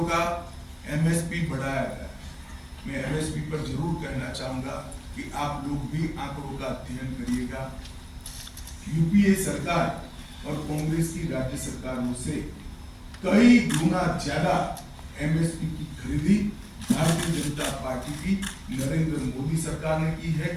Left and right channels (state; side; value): identical; both; correlation 1.00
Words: का MSP बढ़ाया गया है। मैं MSP पर जरूर कहना चाहूंगा कि आप लोग भी आंकड़ों का अध्ययन करिएगा। यूपीए सरकार और कांग्रेस की राज्य सरकारों से कई गुना ज्यादा MSP की खरीदी भारतीय जनता पार्टी की नरेंद्र मोदी सरकार ने की है,